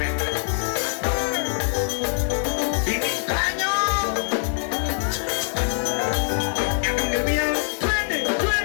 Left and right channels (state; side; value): silent; right; digital silence